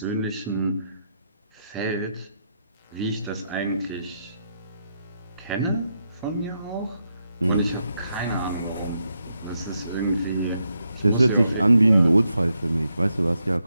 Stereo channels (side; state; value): both; inverted; correlation -0.82